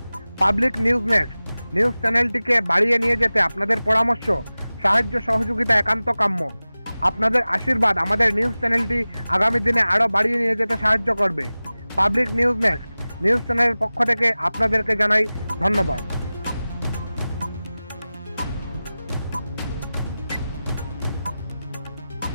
পাবলিক নিউজ নেক্সট নিউজ চ্যানেলটিকে বাড়িয়ে নিয়ে যেতে আপনাদের পরামর্শ, সাহায্য, সহযোগিতা একান্ত কাম্য। আপনাদের আশীর্বাদ আমাদের নিউজ চ্যানেলটি আগামী দিনে আরও বাড়িয়ে নিয়ে যেতে সাহায্য করবে। পাবলিক নিউজ নেক্সট নিউজ চ্যানেলের পক্ষ থেকে আপনাদেরকে জানাই ধন্যবাদ।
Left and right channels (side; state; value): both; inverted; correlation -0.97